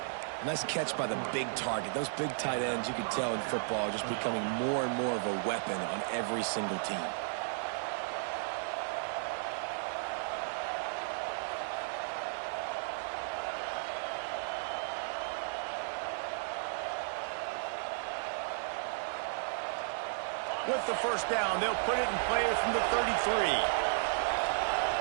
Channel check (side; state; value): left; silent; digital silence